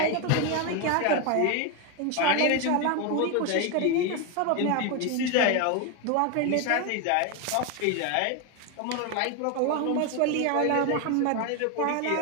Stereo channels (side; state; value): both; different; correlation 0.01